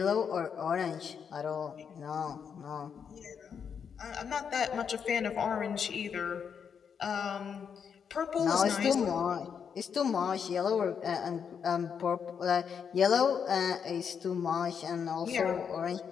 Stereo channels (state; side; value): quieter; right; 7.1 dB